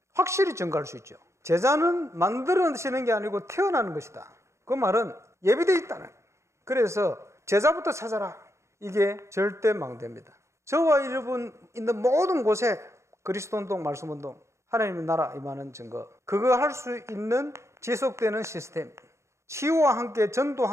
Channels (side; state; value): left; late; 0.14 ms